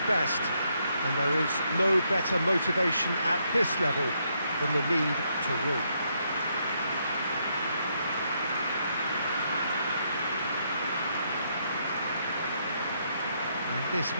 And there is no better motivation at this level than the need to win. And this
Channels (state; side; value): inverted; both; correlation -0.76